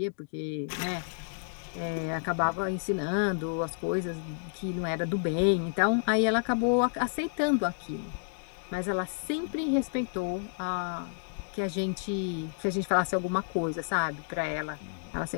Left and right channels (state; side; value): silent; right; digital silence